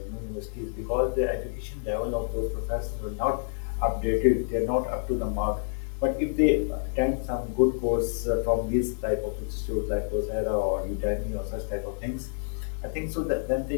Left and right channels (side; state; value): right; silent; digital silence